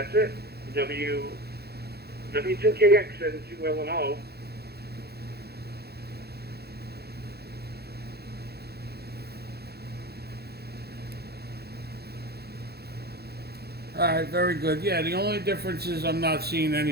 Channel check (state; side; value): late; left; 0.46 ms